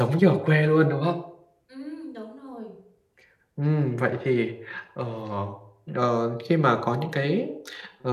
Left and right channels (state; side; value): identical; both; correlation 1.00